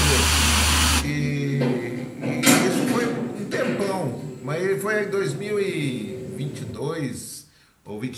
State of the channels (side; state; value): both; identical; correlation 1.00